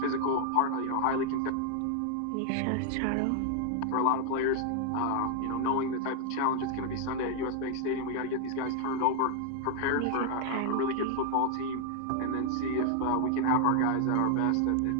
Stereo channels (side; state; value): both; different; correlation 0.00